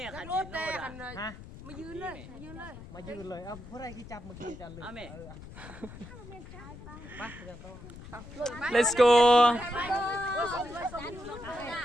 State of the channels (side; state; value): left; noise; rumble, 15 dB below the sound